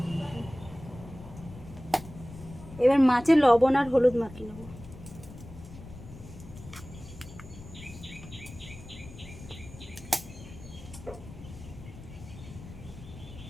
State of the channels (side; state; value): left; noise; rumble, 15 dB below the sound